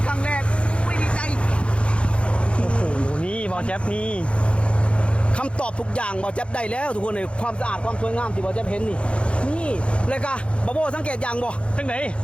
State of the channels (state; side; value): late; right; 0.059 ms